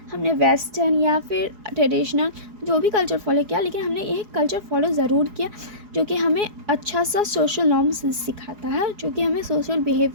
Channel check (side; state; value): left; late; 4.8 ms